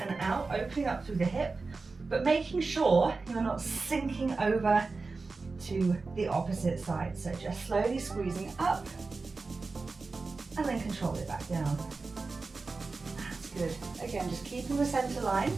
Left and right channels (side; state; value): left; quieter; 4.0 dB